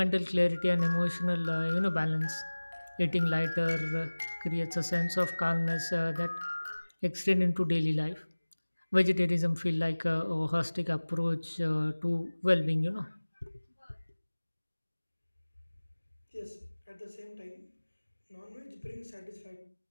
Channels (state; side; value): inverted; both; correlation -1.00